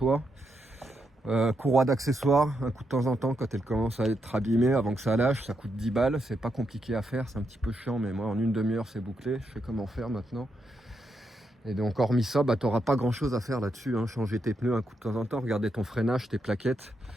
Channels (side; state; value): both; normal; correlation 0.81